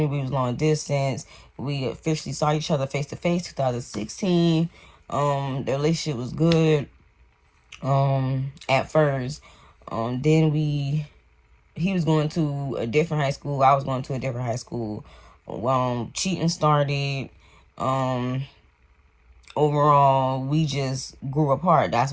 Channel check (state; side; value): identical; both; correlation 1.00